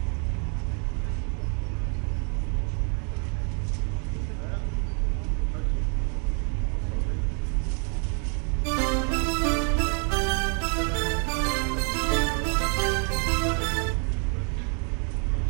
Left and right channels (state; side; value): quieter; left; 39.8 dB